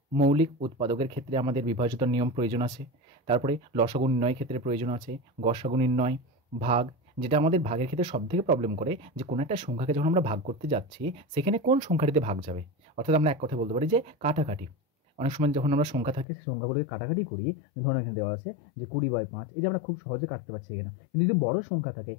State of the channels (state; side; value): drops out; right; at 16.2 s